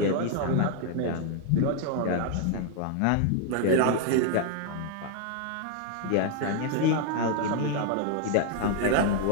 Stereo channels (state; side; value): different; both; correlation 0.00